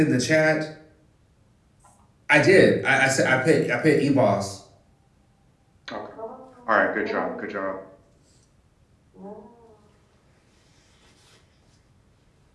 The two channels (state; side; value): identical; both; correlation 1.00